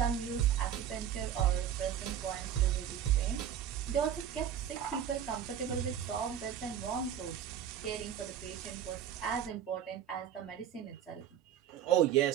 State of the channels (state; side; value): quieter; left; 9.6 dB